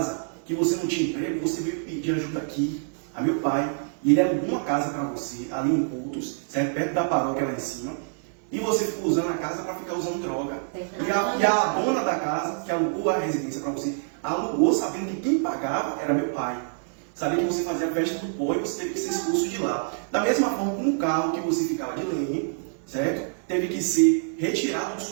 que você não tinha emprego, você veio pedir ajuda aqui a meu pai, e ele alugou uma casa para você, ali em Cultos, certo? Perto da paróquia lá em cima, e você ficou usando a casa para ficar usando droga. E a dona da casa, que alugou a residência para você, alugou sabendo que quem pagava era meu pai. Sabia que você fazia festa do pó e você teve que ser expulso de lá. Da mesma forma como o carro que você ficava de lenha, certo? Teve que ser retirado de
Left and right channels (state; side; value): silent; left; 61 dB below the other